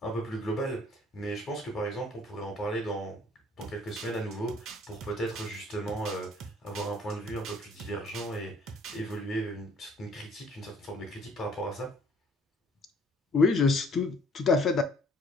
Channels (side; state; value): both; normal; correlation 0.58